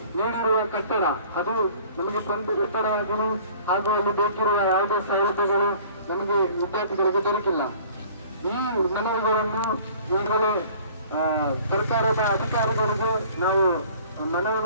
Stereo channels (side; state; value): both; inverted; correlation -0.51